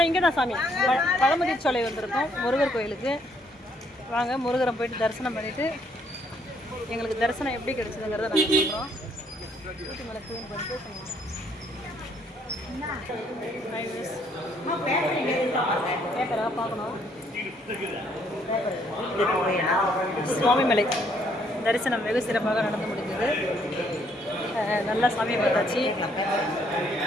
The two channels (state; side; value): normal; both; correlation 0.68